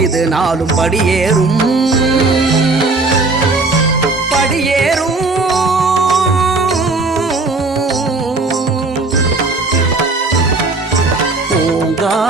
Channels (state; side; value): quieter; left; 3.5 dB